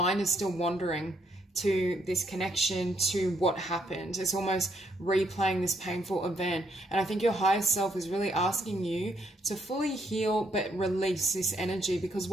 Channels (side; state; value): both; normal; correlation 0.73